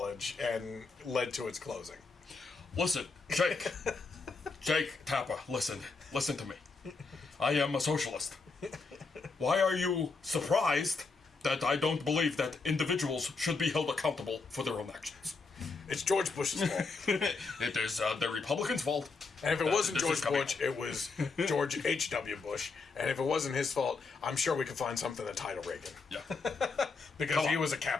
and led to its closing? Listen, Jake Tapper, listen to me. I am a socialist. Why are you surprised that I don't believe that individuals should be held accountable for their own actions? It's George Bush's fault. It is the Republicans' fault. And if it wasn't George Bush, it was George H.W. Bush. And if it wasn't his fault, I'm sure we could find something to tie to Reagan. Yeah. Because he was a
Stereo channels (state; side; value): quieter; right; 4.3 dB